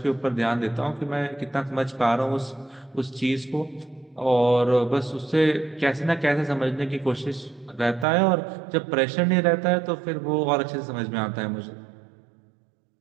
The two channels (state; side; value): drops out; left; at 8.1 s